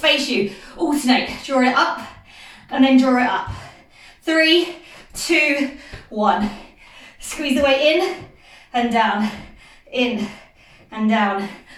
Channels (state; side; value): identical; both; correlation 1.00